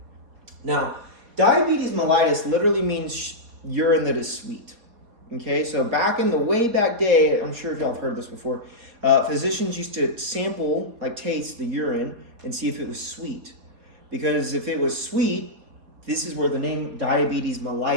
Now, diabetes mellitus literally means urine that is sweet. Okay? So way back day, I'm sure if y'all have heard this before, physicians used to sample, taste the urine and see if it was sweet. Because if it was sweet, this is where the name diabetes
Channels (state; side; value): late; left; 4.2 ms